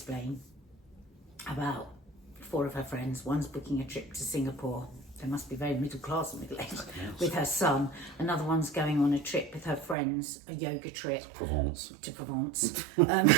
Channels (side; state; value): left; drops out; at 10.0 s